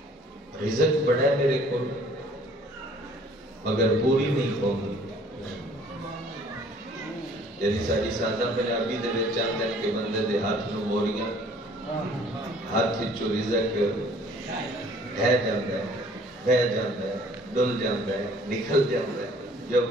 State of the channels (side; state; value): both; normal; correlation 0.55